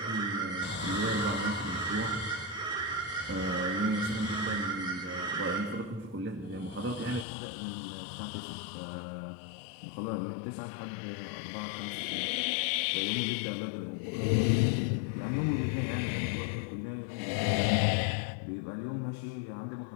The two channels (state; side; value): drops out; right; at 7.2 s